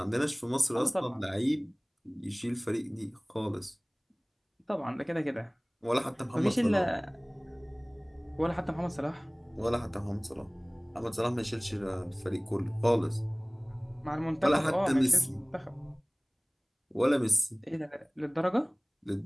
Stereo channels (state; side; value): identical; both; correlation 1.00